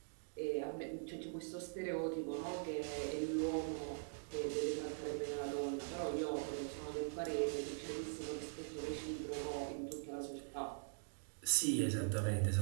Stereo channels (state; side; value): silent; left; digital silence